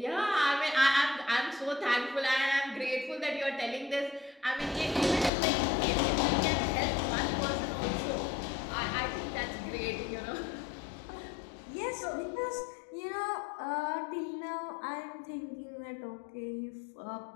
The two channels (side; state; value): right; drops out; at 5.3 s